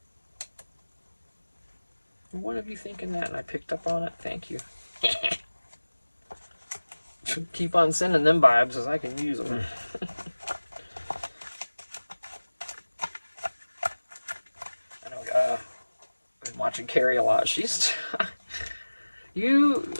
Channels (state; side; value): inverted; both; correlation -1.00